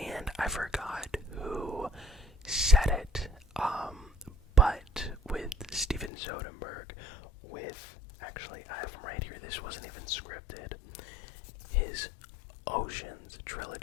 I forgot who said it, but with Steven Soderbergh, actually I have him right here, this wasn't even scripted, his Oceans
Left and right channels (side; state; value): right; drops out; at 6.1 s